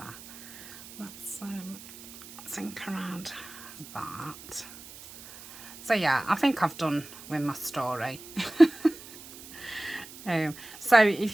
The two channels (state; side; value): noise; right; hiss, 16 dB below the sound